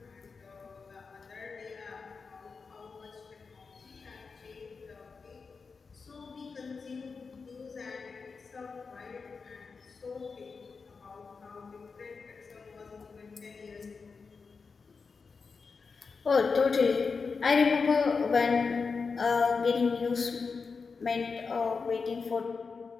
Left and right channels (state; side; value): quieter; right; 4.9 dB